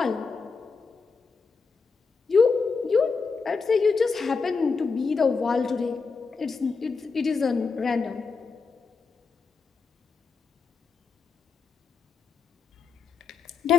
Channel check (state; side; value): quieter; right; 4.8 dB